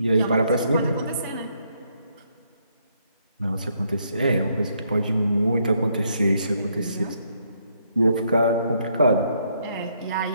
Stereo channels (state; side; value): inverted; both; correlation -0.73